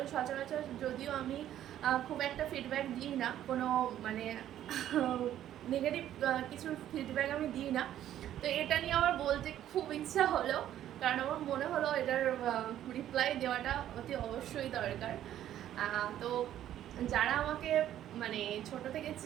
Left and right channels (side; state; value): left; quieter; 11.7 dB